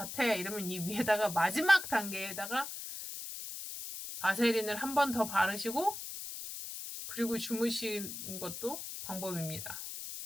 이러면 이 위에다가 마지막 단계에다가 바세린을 한 번 더 바르시고 그리고 주무시는 것도 방법입니다.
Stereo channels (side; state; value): left; noise; hiss, 8 dB below the sound